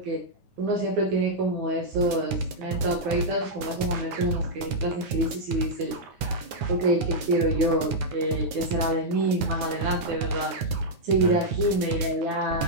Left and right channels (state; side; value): late; left; 9.4 ms